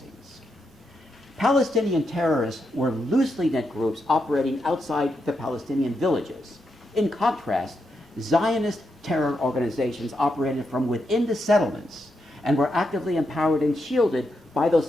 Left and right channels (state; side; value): normal; both; correlation 0.83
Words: Palestinian terrorists were loosely knit groups operating outside the Palestinian villages. In contrast, Zionist terror organizations operated from within the settlements and were actively empowered and shielded by those